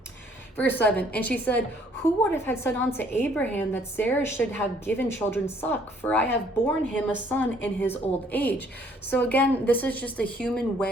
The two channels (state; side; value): normal; both; correlation 0.62